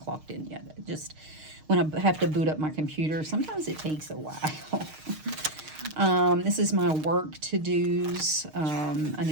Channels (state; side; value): late; left; 6.5 ms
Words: in yet. Just when I have to boot up my computer, sometimes it takes a while. This is my work to-dos. I